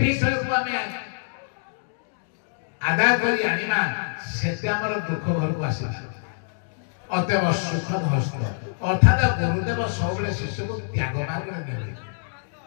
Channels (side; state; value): right; silent; digital silence